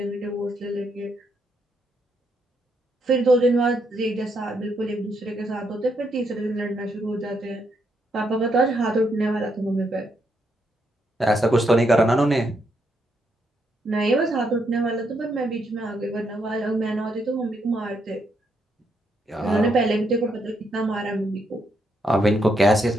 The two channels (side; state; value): both; normal; correlation 0.77